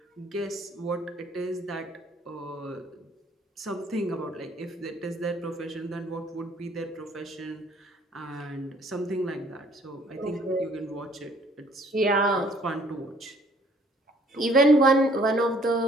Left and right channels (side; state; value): both; normal; correlation 0.60